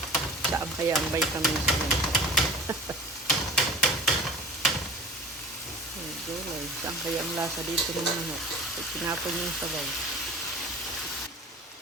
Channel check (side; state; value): both; normal; correlation 0.41